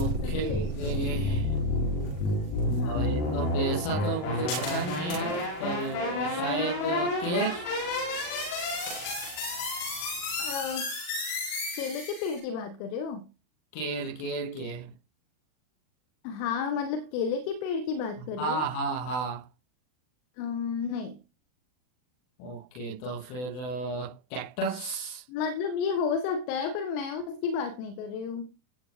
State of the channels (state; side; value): late; right; 40 ms